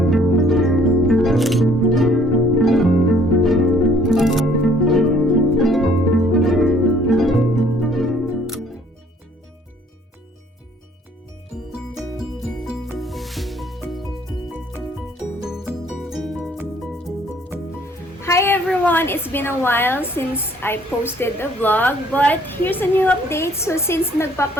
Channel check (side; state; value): both; normal; correlation 0.60